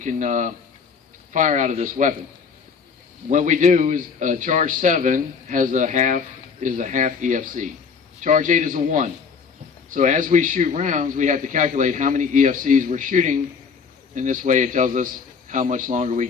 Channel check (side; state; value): right; quieter; 5.8 dB